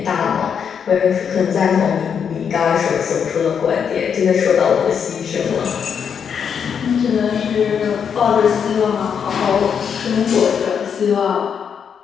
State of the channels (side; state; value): right; quieter; 7.3 dB